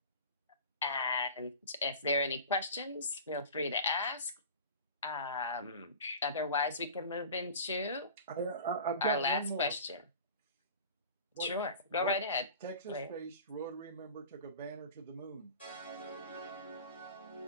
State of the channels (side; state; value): both; inverted; correlation -0.37